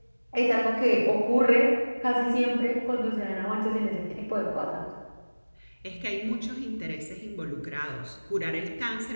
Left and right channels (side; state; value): both; inverted; correlation -1.00